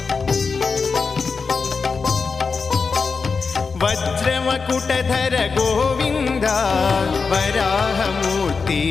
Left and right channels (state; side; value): quieter; right; 4.9 dB